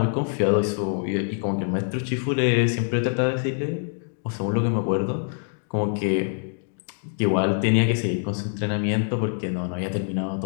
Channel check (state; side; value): silent; right; 62 dB below the other